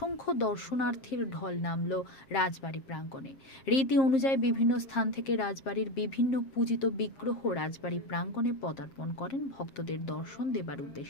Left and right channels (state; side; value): late; right; 7.5 ms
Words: দর্শনার্থীর ঢল নামল রাজবাড়ি প্রাঙ্গণে। রীতি অনুযায়ী বিভিন্ন স্থান থেকে রাজবাড়ির বিভিন্ন পূজিত বিগ্রহ রাজবাড়ি প্রাঙ্গণে পদার্পণ করেন ভক্তদের দর্শন দেবার